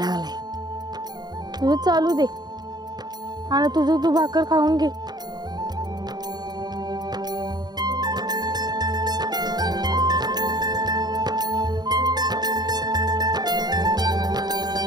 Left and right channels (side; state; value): left; late; 0.20 ms